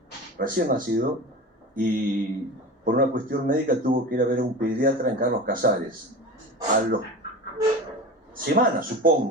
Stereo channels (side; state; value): both; normal; correlation 0.31